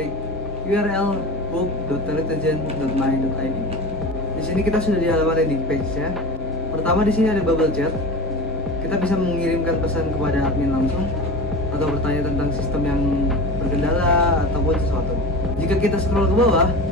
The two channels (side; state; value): both; normal; correlation 0.31